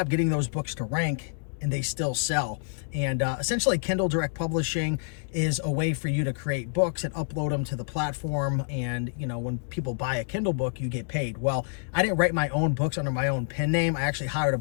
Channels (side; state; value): right; silent; digital silence